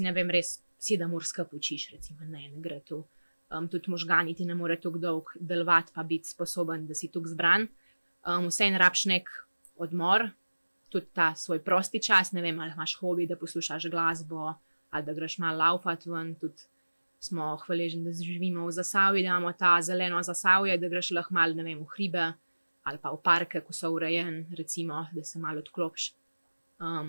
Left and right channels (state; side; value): inverted; both; correlation -1.00